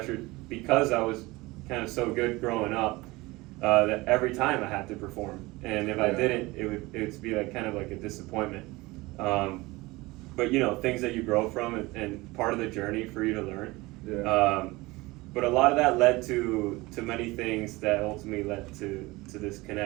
because I was kind of so good growing up that every time I had to perform, and if I didn't, it would be kind of a disappointment. But things that you grow from and part of the journey for you to learn. Yeah. but a lot of that led to many things that ultimately led to this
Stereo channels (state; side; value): quieter; left; 21.7 dB